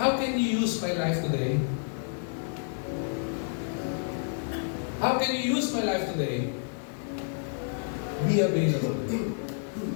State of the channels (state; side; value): silent; right; digital silence